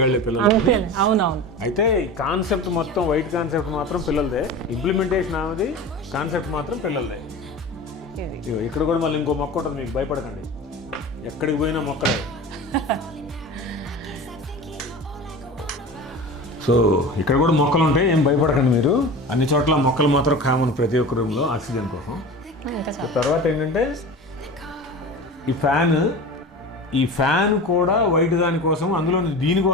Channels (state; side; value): normal; both; correlation 0.33